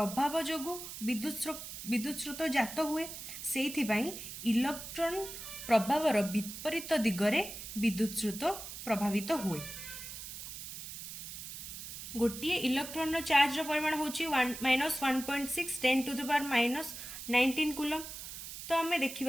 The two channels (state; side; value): noise; right; hiss, 9 dB below the sound